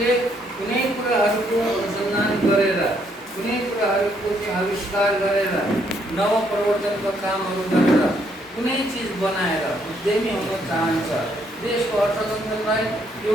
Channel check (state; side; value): normal; both; correlation 0.71